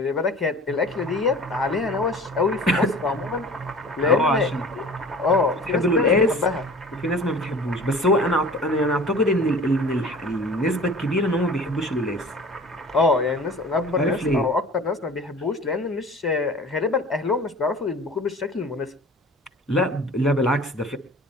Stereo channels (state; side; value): normal; both; correlation 0.42